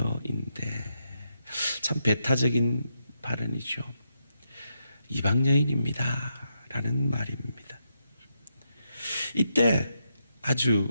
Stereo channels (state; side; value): inverted; both; correlation -0.82